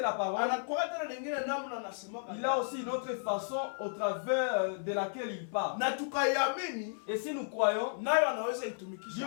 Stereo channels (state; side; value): silent; right; 55 dB below the other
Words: la parole. Anakuwa tena nyingine namna anasema. Il a aussi une autre façon au travers de laquelle il parle. Na tukaiamini. Et si nous croyons, nayo anaweza itumikisha. Dieu